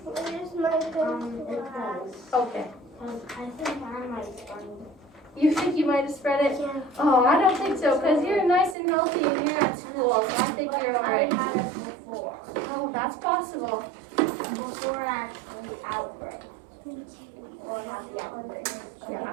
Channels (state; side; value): drops out; left; at 8.8 s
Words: It's It does. Okay. I think I might start. You think you might have spread it? Yeah. Oh, I don't think so, because you're nice and healthy and you're at school, so I think you're I alright. had it before. Oh, that's possible. Before actually the outbreak. Or have the outbreak.